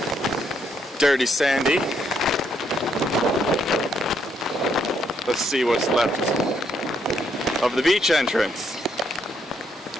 Dirty Sandy. Let's see what's left of the beach entrance.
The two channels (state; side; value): normal; both; correlation 0.74